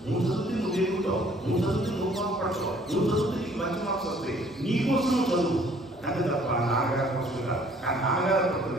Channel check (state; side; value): normal; both; correlation 0.58